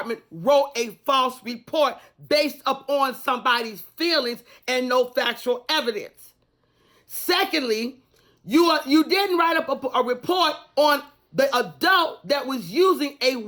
wrote a false report based upon somebody's feelings and no factual evidence. Secondly, you didn't write up a report on the adult that was using a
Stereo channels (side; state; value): both; identical; correlation 1.00